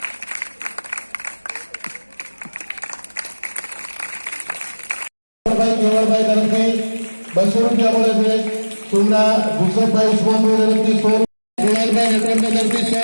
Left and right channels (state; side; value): inverted; both; correlation -1.00